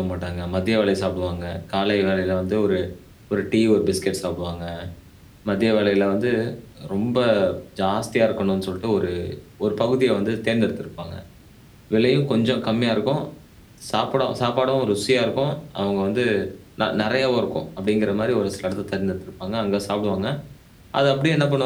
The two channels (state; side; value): identical; both; correlation 1.00